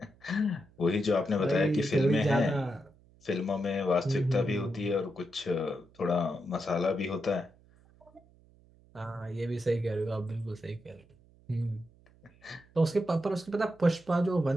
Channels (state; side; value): noise; right; hum, 28 dB below the sound